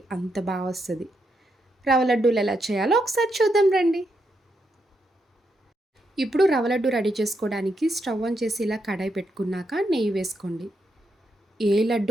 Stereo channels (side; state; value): both; normal; correlation 0.81